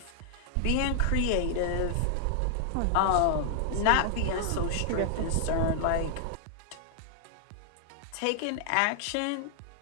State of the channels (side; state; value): both; different; correlation -0.01